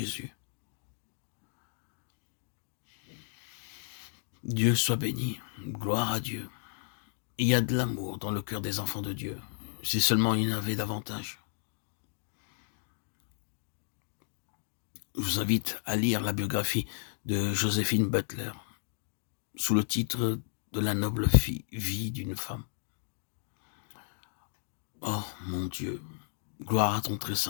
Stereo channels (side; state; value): right; silent; digital silence